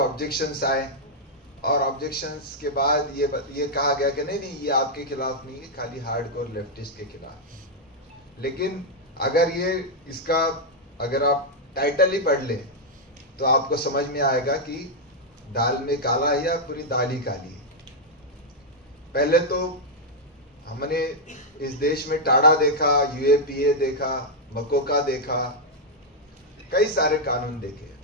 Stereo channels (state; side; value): normal; both; correlation -0.03